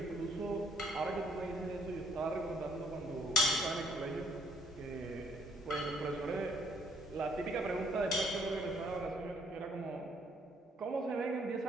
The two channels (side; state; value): both; normal; correlation 0.64